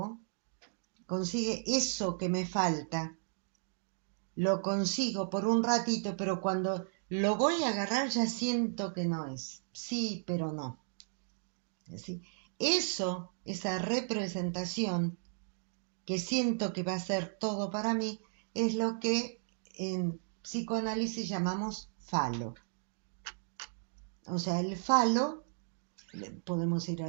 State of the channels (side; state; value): left; silent; digital silence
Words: consigue eso que me falta, lo consigo por un ratito, pero cuando lo voy a agarrar ya siento que no es. Sí, pero no. ¿Sí? Eso, esa representación que siento que va a ser todo para mí, es lo que en psicoanálisis llamamos falo. O sea, el falo, podemos ir a